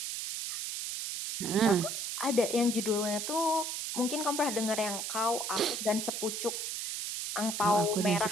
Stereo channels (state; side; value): noise; right; hiss, 4 dB below the sound